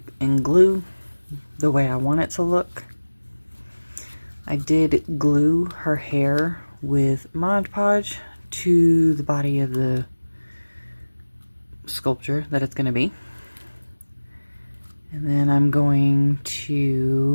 and glue the way I want it to look. I did glue her hair with Mod Podge to the body of the sculpture that it's going to be. And then I'm going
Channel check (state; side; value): inverted; both; correlation -1.00